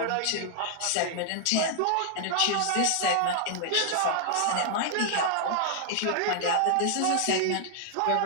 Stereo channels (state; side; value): different; both; correlation -0.01